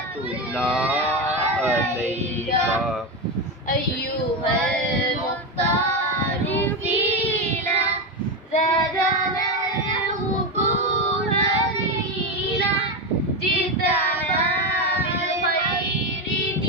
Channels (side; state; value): both; normal; correlation 0.13